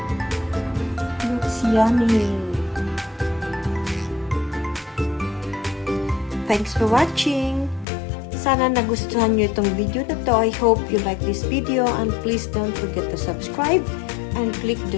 Looks yummy. Thanks for watching. Sana nagustuhan nyo itong video na to. I hope you like this video and please don't forget to subscribe and click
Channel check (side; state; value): right; drops out; at 7.9 s